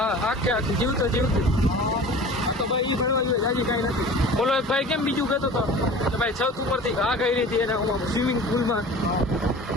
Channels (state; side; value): normal; both; correlation 0.40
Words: આખી જીવતો જીવતી. તો ભાઈ એ ફરવા જોઈએ જાજી કાંઈ નથી. બોલો એક ભાઈ કેમ બીજું કહેતો હતો કે ભાઈ છત ઉપરથી ઘા કરી હતી એને સ્વિમિંગ પુલમાં.